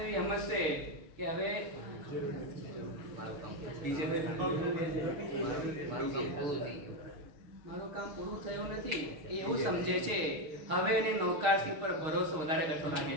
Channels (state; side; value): late; left; 6.5 ms